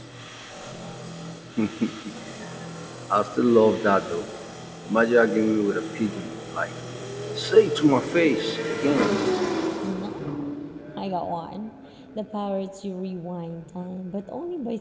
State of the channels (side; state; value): both; identical; correlation 1.00